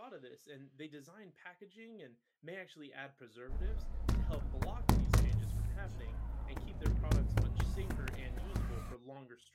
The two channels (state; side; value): identical; both; correlation 1.00